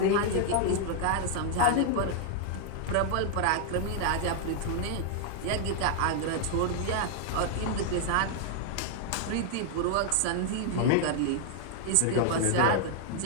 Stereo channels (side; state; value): both; different; correlation 0.00